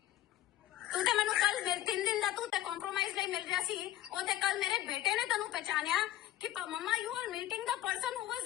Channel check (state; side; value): quieter; right; 13.8 dB